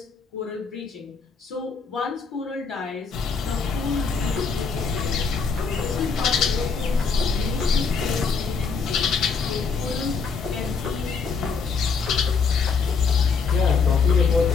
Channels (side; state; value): right; quieter; 5.2 dB